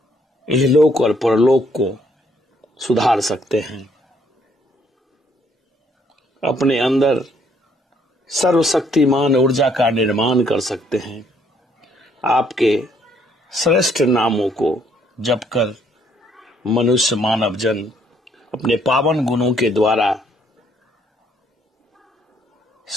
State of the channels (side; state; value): both; normal; correlation 0.67